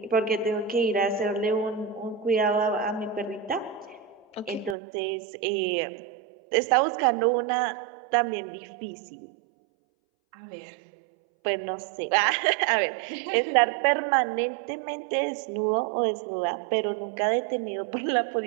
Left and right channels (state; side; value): drops out; left; at 4.8 s